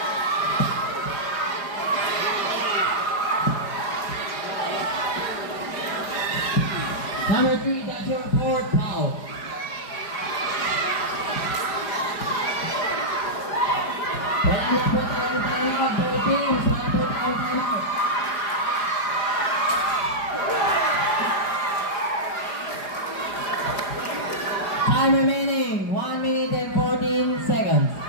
Number 3, that's your fourth foul. Wala na po tayong timeout, both teams. Wala po tayong timeout. Time remaining, 1 minute and 14 seconds.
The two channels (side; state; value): right; late; 4.9 ms